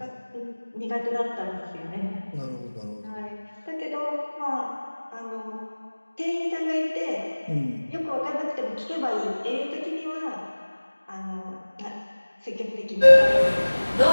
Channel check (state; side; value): inverted; both; correlation -1.00